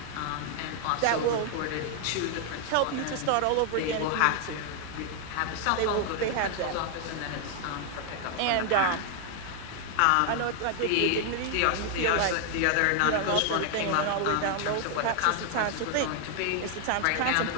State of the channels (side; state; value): both; different; correlation 0.00